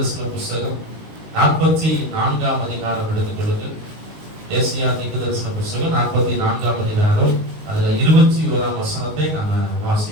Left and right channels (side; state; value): left; late; 19 ms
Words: புத்தகம் 44ஆம் அதிகாரம் எடுத்துக்கொள்ளுங்கள். ஏசாயா தீர்க்கதரிசன புத்தகம் 44ஆம் அதிகாரம், அதுல 21ஆம் வசனத்தை நாம